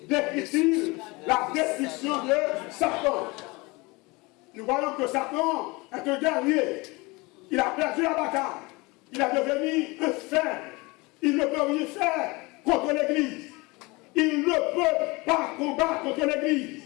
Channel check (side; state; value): right; quieter; 24.7 dB